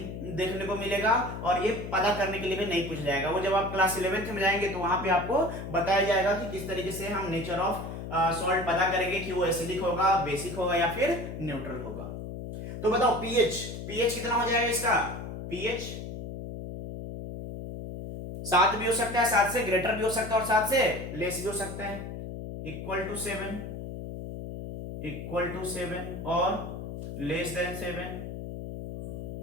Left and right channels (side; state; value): left; noise; hum, 8 dB below the sound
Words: देखने को मिलेगा और ये पता करने के लिए भी नहीं पूछ जाएगा। वो जब आप क्लास 11th में जाएंगे तो वहां पे आपको बताया जाएगा कि किस तरीके से हम नेचर ऑफ सॉल्ट पता करेंगे कि वो एसिडिक होगा, बेसिक होगा या फिर न्यूट्रल होगा। तो बताओ पीएच कितना हो जाएगा इसका, पीएच 7 भी हो सकता है, 7 से ग्रेटर भी हो सकता है और 7 से लेस भी हो सकता है। इक्वल टू 7 और लेस देन 7